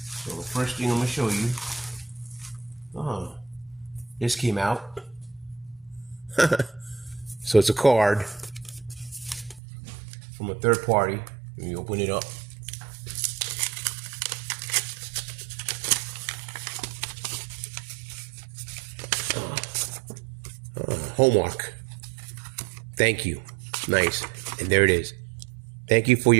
the first thing I'm gonna show you, this came out. So it's a card from a third party. Let me open it up. Homework. Thank you. Nice. And there it is. Thank you for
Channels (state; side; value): drops out; left; at 9.6 s